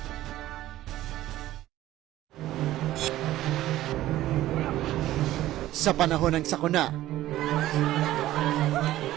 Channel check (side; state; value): left; quieter; 14.7 dB